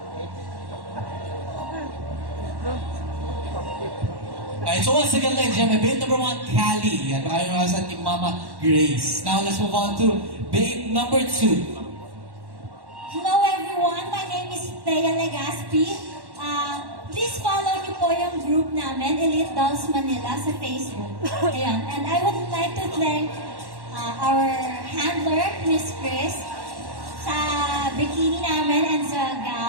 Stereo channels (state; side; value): late; left; 1.1 ms